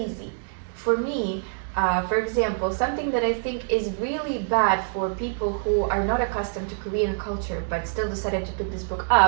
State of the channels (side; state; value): left; silent; digital silence